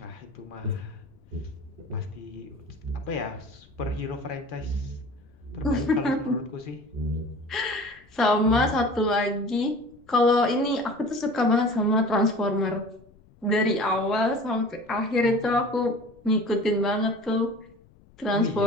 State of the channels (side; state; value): left; noise; rumble, 27 dB below the sound